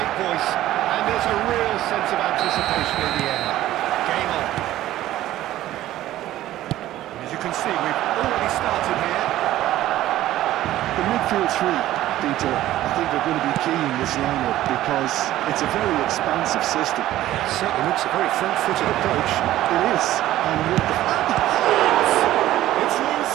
voice, and there's a real sense of anticipation in the air. Game on. As you can see, we've already started here. The midfield three, Peter, I think are going to be key in this lineup because it's a very expansive system. It certainly looks a very front-footed approach. It is. And with the... It's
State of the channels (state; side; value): quieter; left; 14.3 dB